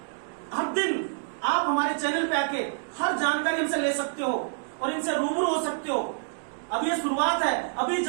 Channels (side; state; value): left; silent; digital silence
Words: हर दिन आप हमारे चैनल पे आके हर जानकारी हमसे ले सकते हो और इनसे रूबरू हो सकते हो। अब ये शुरुआत है, अभी